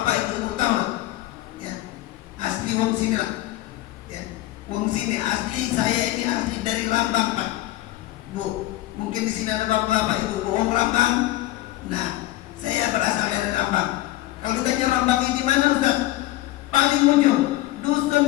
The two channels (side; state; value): right; quieter; 16.4 dB